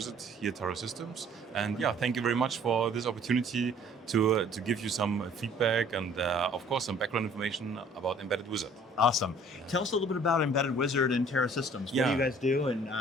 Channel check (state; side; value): normal; both; correlation 0.55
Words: here at Taro Systems. And yeah, thank you very much for this opportunity to give you some feedback and, of course, some background information about Embedded Wizard. Awesome. Tell us a little bit about Embedded Wizard and Taro Systems. What do you guys do, and